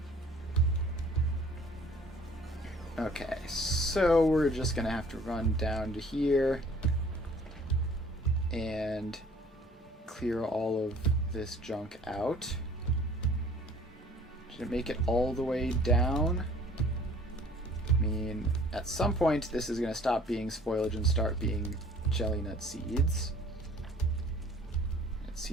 Okay, so we're just gonna have to run down to here and clear all of this junk out. Did it make it all the way down? I mean, at some point this is gonna stop being spoilage and start being jelly nut seeds. It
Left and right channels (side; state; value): both; normal; correlation 0.53